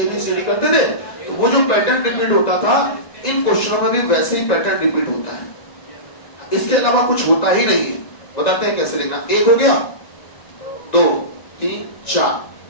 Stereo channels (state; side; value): late; right; 1.9 ms